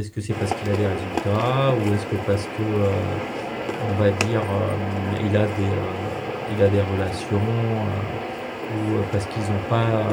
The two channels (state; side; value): identical; both; correlation 1.00